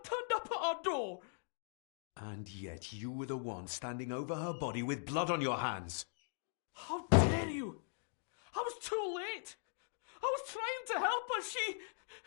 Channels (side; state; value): right; silent; digital silence